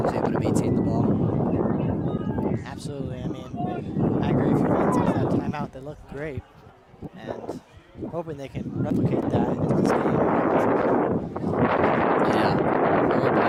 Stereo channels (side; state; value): both; identical; correlation 1.00